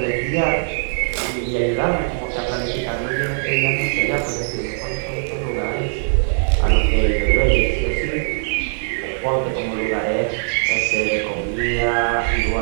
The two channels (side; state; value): left; silent; digital silence